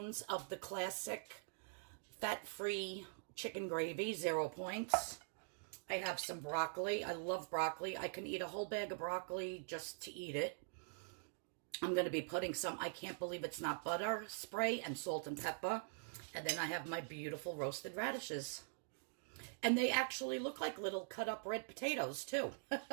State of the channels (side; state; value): left; silent; digital silence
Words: of the classic fat-free chicken gravy, 0 points. I have some broccoli. I love broccoli. I can eat a whole bag of broccoli just to eat it. I'm going to be putting some, I can't believe it's not butter spray, and salt and pepper. And then I have my beautiful roasted radishes. And they actually look like little cut up red potatoes too.